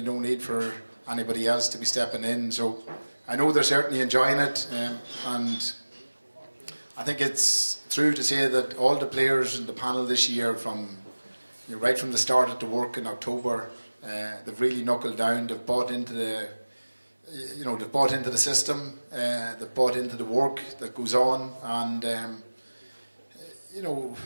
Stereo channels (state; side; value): inverted; both; correlation -1.00